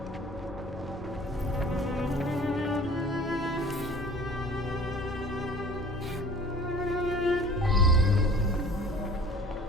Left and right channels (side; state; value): both; normal; correlation 0.46